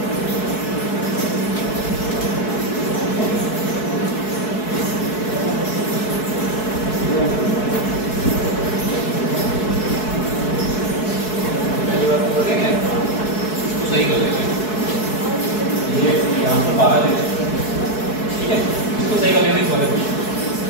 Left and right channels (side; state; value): right; late; 4.7 ms